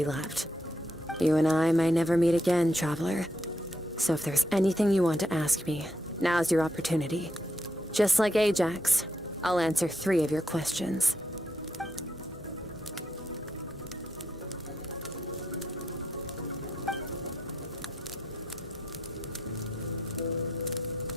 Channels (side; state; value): both; normal; correlation 0.78